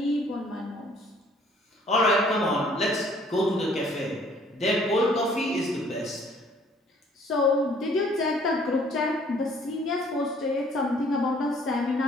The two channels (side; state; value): both; normal; correlation 0.58